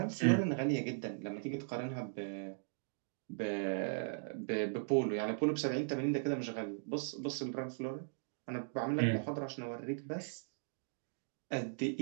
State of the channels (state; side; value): silent; left; digital silence